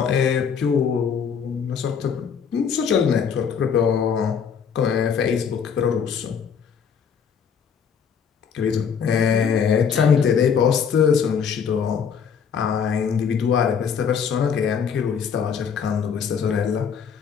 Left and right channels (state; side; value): quieter; right; 6.9 dB